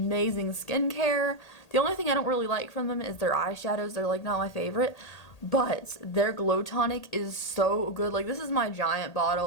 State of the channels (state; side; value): late; right; 1.8 ms